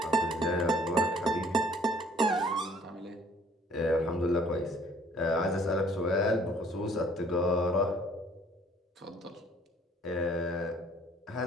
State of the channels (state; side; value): normal; both; correlation 0.58